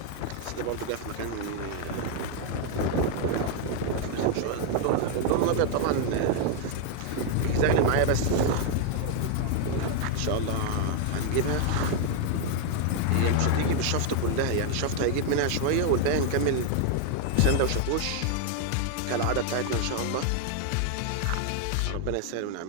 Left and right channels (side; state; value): both; different; correlation 0.00